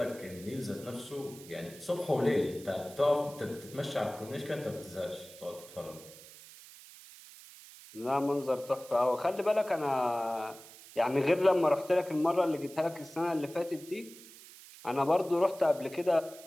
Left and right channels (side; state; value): right; noise; hiss, 18 dB below the sound